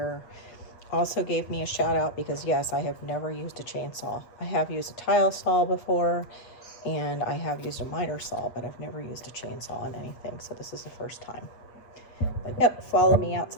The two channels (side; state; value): right; late; 8.2 ms